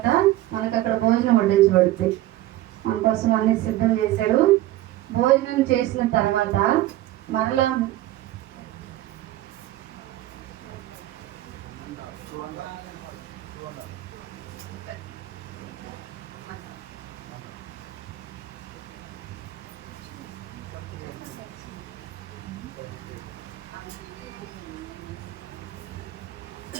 మనకు అక్కడ భోజనం వడ్డించబడుతుంది. మన కోసం అన్ని సిద్ధం చేశాడు. భోజనం చేసిన తర్వాత మరలా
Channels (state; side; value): quieter; left; 15.4 dB